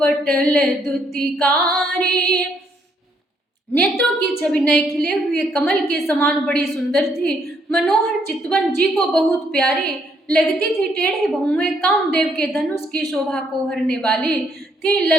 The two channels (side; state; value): both; normal; correlation 0.71